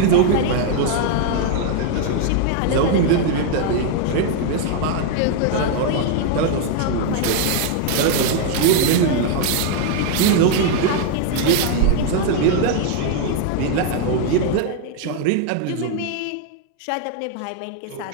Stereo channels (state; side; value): different; both; correlation 0.00